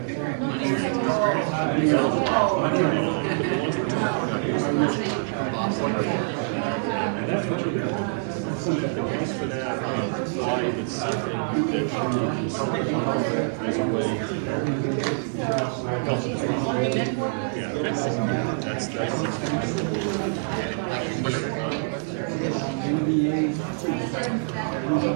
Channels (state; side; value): silent; left; digital silence